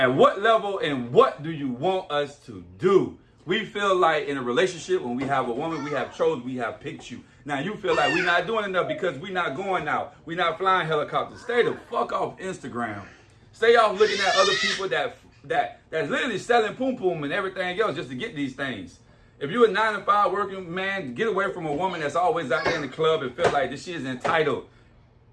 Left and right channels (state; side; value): identical; both; correlation 1.00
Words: what level and what do you want us to do? We feel like in a relationship, when we have a woman, we have chose, we have picked you. Now you feel like we're not doing enough because we're not going out. We're not flying helicopters. Stay the fuck off Instagram. Stay off looking at other people that's literally selling poom poom and everything else just to get these things. If you're a 9-to-5 working man, get away from a woman that's always out there in the club and feel like this she is entitled.